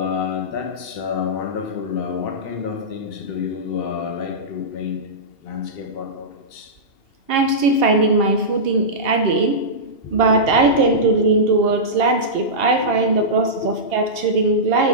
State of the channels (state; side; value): late; right; 2.7 ms